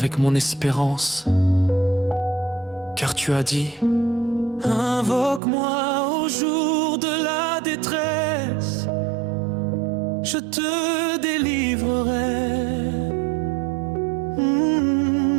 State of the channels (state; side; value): drops out; left; at 5.4 s